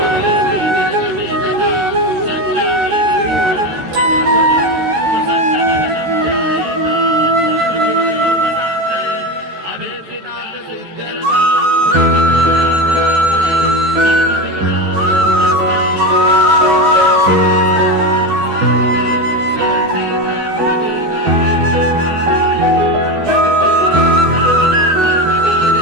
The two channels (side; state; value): left; late; 13 ms